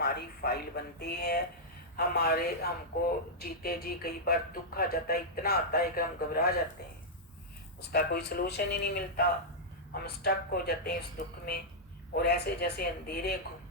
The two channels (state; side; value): normal; both; correlation -0.08